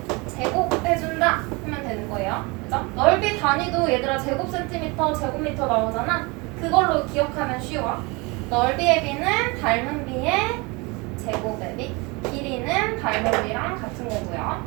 제곱해준다 하면 되는 거예요. 그죠? 넓이 단위도 얘들아 제곱센티미터, 제곱미터 나오잖아. 그걸로 기억하면 쉬워. 넓이의 B는 닮은 B의 제곱의 B, 길이는 닮은 B랑 같은 거고요.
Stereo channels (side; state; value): left; quieter; 26.9 dB